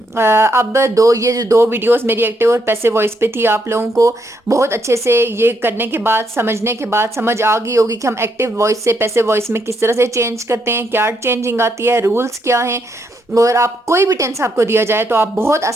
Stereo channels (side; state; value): both; normal; correlation 0.77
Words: अब ये जो दो वीडियोस मेरी एक्टिव और पैसिव वॉइस पे थी, आप लोगों को बहुत अच्छे से ये करने के बाद, समझने के बाद समझ आ गई होगी कि हम एक्टिव वॉइस से पैसिव वॉइस में किस तरह से चेंज करते हैं, क्या चेंजिंग आती है, रूल्स क्या हैं। और आप कोई भी टेंस आपको दिया जाए तो आप बहुत